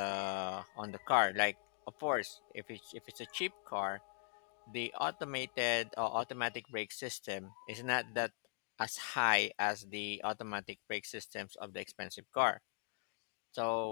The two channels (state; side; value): silent; right; digital silence